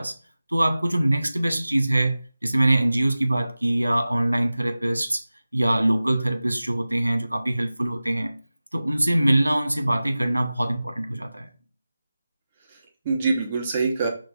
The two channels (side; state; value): both; inverted; correlation -0.96